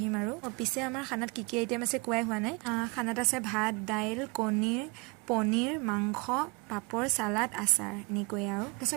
আৰু পিছে আমাৰ খানাত কি আইটেম আছে কোৱাই হোৱা নাই। খানাত আছে ভাত, দাইল, কণীৰ, পনীৰ, মাংস, পাপৰ, চালাড, আচাৰ, এনেকৈয়ে আৰু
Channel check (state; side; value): quieter; left; 27.9 dB